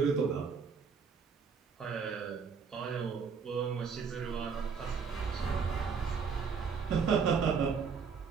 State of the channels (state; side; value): quieter; left; 5.8 dB